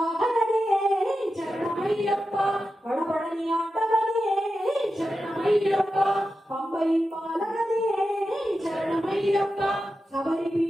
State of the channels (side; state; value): both; normal; correlation 0.91